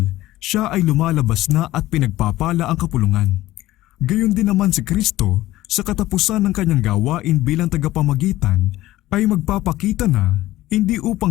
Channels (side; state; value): right; quieter; 16.1 dB